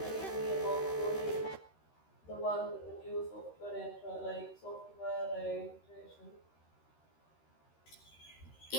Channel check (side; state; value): right; late; 13 ms